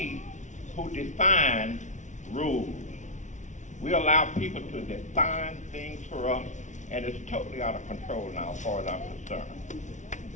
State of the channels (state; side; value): late; right; 0.36 ms